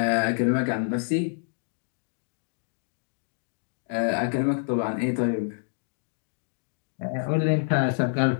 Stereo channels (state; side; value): silent; right; digital silence